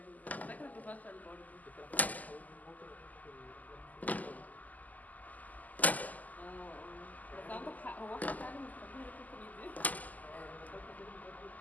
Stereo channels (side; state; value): right; late; 0.080 ms